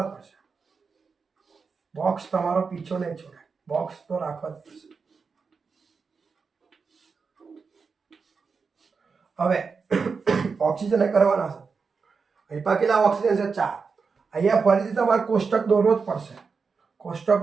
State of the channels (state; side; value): quieter; left; 5.1 dB